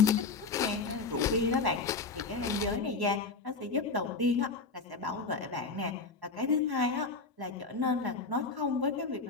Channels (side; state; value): right; quieter; 4.3 dB